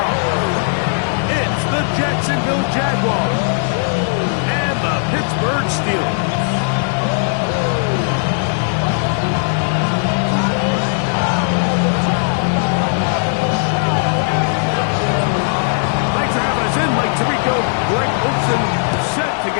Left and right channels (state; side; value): silent; right; 58 dB below the other